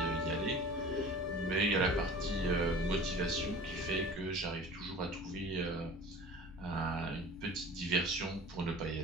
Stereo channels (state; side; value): normal; both; correlation 0.41